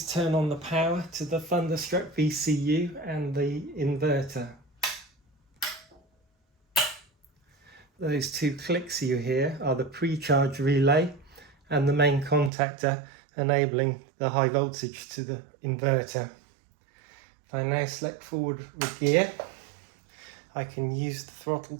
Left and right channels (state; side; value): drops out; left; at 12.5 s